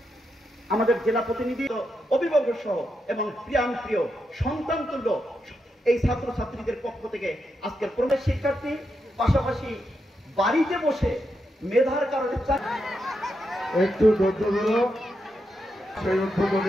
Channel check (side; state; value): both; normal; correlation 0.84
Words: আমাদের জেলা প্রতিনিধি, অভিভাবক সহ এবং প্রিয়ান প্রিয় সন্তান তুল্য এই ছাত্রছাত্রীদের পক্ষ থেকে আজকের প্রবেশ শিক্ষার্থী পাশাপাশি বাড়িতে বসে মেধার কারণে একটু ধৈর্য ধরো। সেই